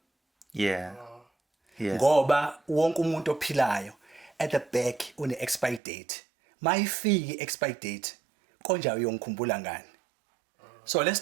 Yeah. Yes. Ngoba wonke umuntu ophilayo at the back une expire date. Mayifiki expire date, konja uyongikhumbula ngani. So let's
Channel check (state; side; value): drops out; left; at 5.8 s